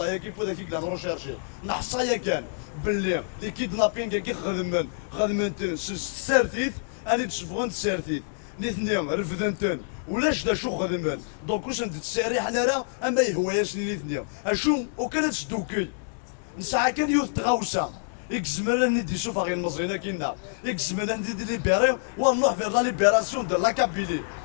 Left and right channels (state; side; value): silent; right; 60 dB below the other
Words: كيف داك كي كلام روشيرشي نحصايا كان باللي لي كيدنابين كي خدمن السارتيت اني تشوفون السارتيت الاثنين رفدنتن ولاش دا شو خدمن دونك واش نتساري حنا راه اما يهواياش الاثنين اشو وكانت تدوكي نساعه كان يوث تغاوسه يكزمر ندي شوف غير المزينه كينا يكزمر ندي ليبيري ونروح فير لا ليبيراسيون دو لا كابيلي